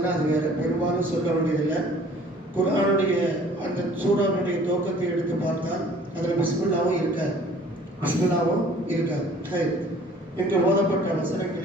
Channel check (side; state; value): both; normal; correlation 0.52